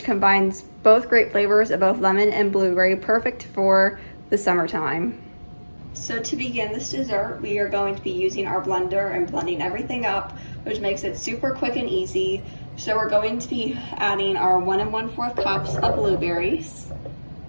combines both great flavors of both lemon and blueberry, perfect for the summertime. So to begin this dessert, we are going to be using our blender and blending everything up, which makes it super quick and easy. So we're going to be adding our 1 1/4 cups of blueberries,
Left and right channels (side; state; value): both; inverted; correlation -1.00